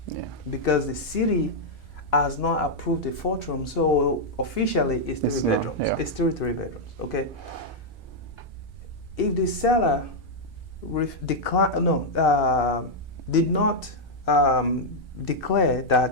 because the city has not approved the 4th room. So officially, it's 3 bedrooms. It's still 3 bedrooms. Okay. If the seller did not declare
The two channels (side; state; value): both; normal; correlation -0.03